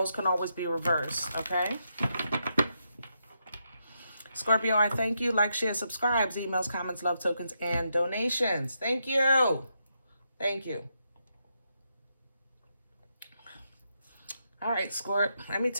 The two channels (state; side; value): inverted; both; correlation -0.81